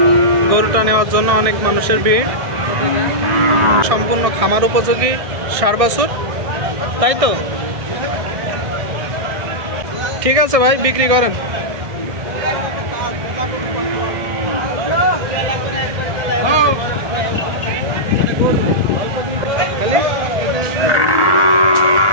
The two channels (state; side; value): late; left; 1.6 ms